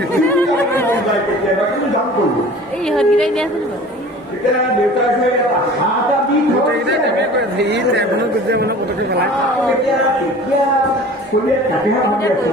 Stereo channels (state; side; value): normal; both; correlation 0.43